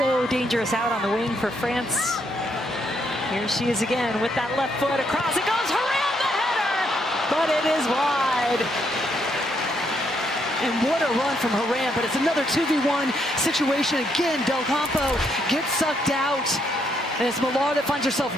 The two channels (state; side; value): normal; both; correlation 0.74